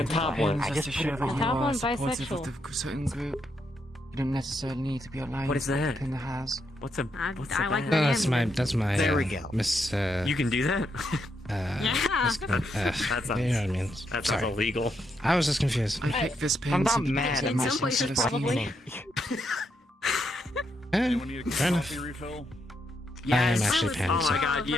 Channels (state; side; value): normal; both; correlation 0.79